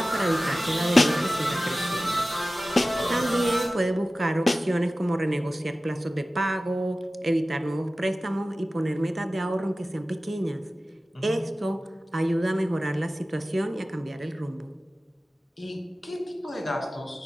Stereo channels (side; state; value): both; normal; correlation 0.96